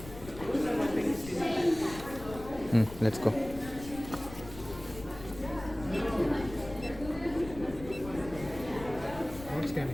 Let's go. Not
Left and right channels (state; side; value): noise; left; rumble, 14 dB below the sound